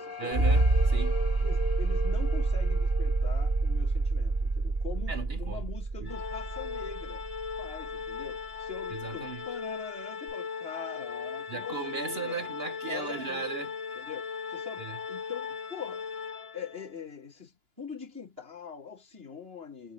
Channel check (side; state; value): left; late; 2.9 ms